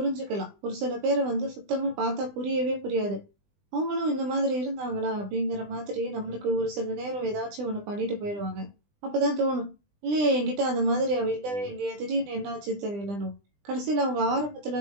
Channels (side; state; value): left; late; 20 ms